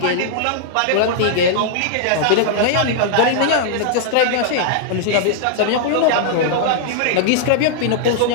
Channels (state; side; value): different; both; correlation -0.01